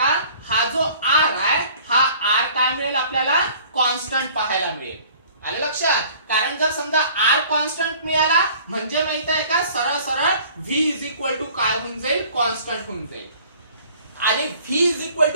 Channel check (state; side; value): inverted; both; correlation -0.51